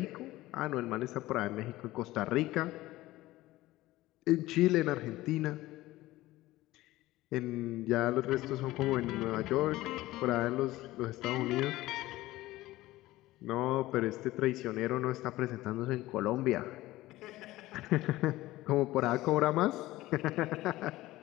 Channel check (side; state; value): right; quieter; 17.3 dB